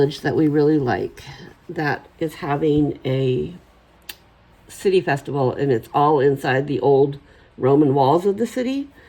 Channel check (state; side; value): identical; both; correlation 1.00